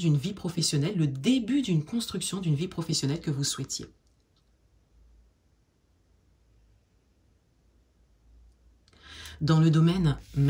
vie professionnelle, le début d'une construction d'une vie professionnelle que vous souhaitiez. Dans le domaine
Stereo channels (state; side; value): identical; both; correlation 1.00